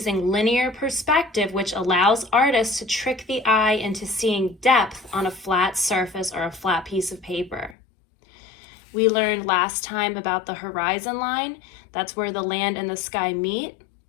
linear perspective, which allows artists to trick the eye into seeing depth on a flat surface or a flat piece of paper. We learned last time about the horizon line. That's where the land and the sky meet.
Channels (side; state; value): right; drops out; at 7.8 s